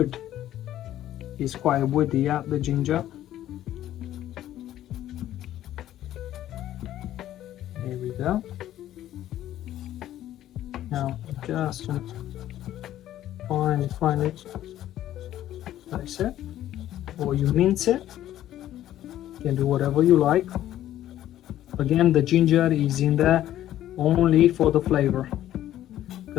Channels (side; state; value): right; quieter; 12.8 dB